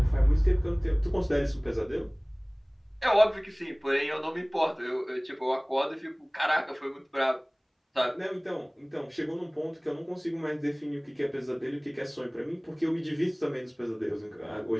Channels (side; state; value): both; identical; correlation 1.00